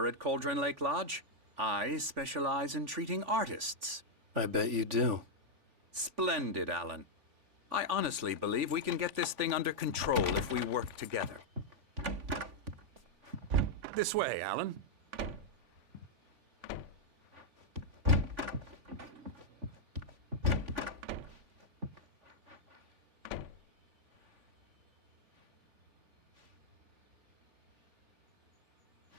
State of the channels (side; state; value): left; late; 3.5 ms